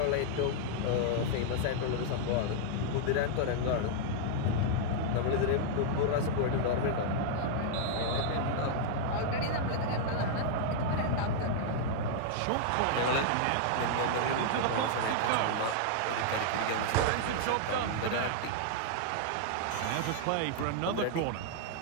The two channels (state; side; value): different; both; correlation -0.01